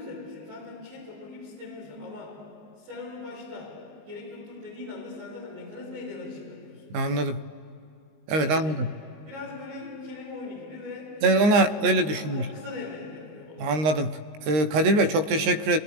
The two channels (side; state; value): left; late; 19 ms